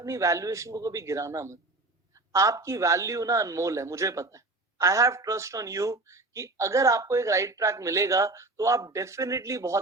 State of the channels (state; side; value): quieter; left; 3.1 dB